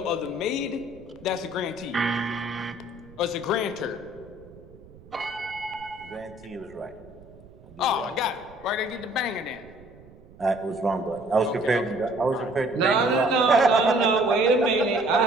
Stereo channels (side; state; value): right; noise; rumble, 22 dB below the sound